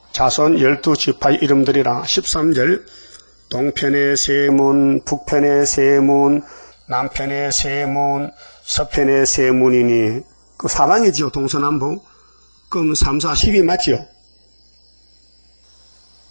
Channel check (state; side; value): inverted; both; correlation -1.00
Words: 자손 12지파의 이름들이라 13절 동편의 세 문, 북편의 세 문, 남편의 세 문, 서편의 세 문이니 그 사방이지요. 동서남북. 그럼 3, 4, 10이 맞지요.